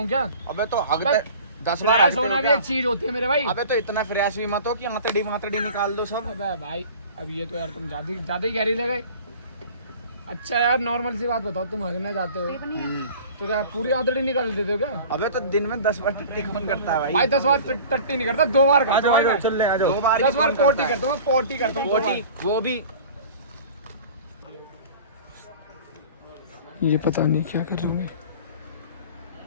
क्या? अबे तो हगते 10 बार फ्रेश होना भी एक चीज होती है मेरे भाई। अबे तो इतना फ्रेश भी मत हो कि आंतड़ी निकाल दो सब। अबे भाई अब ये तो यार तुम ज्यादा ही गहरी ले गए। अच्छा यार नॉर्मल सी बात बताओ, तुम हगने जाते हो तो क्या पूरी आंतड़ी निकाल देते हो क्या? अबे तो दिन में 10 बार टट्टी कौन करता है भाई? भाई 10 बार टट्टी नहीं करता, 2 बार करता हूँ। चल ले आ जाओ। 2 बार 10 बार पोटी करता हूँ, पोटी करता हूँ 2 बार। वो भी ये पता नहीं क्या कर रहे हैं।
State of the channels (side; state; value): both; inverted; correlation -0.42